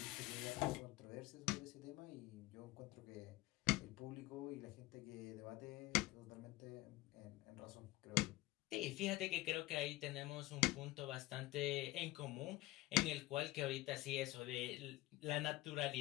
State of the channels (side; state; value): right; quieter; 19.2 dB